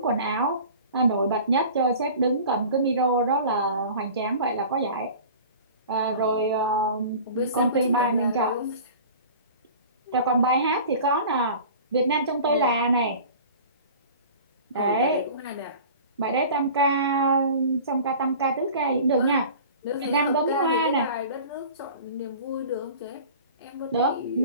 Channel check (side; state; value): both; inverted; correlation -0.41